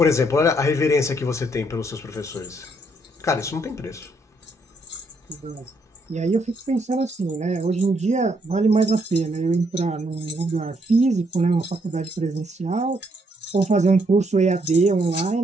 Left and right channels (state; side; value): normal; both; correlation 0.73